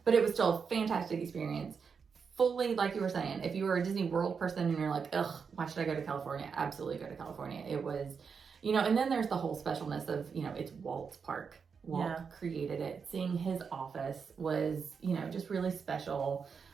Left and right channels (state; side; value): quieter; left; 5.9 dB